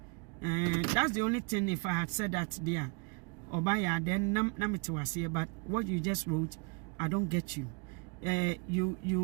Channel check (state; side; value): quieter; left; 33.4 dB